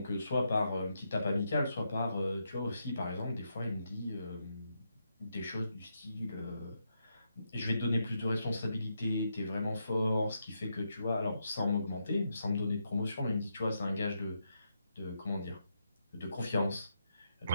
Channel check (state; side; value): inverted; both; correlation -0.82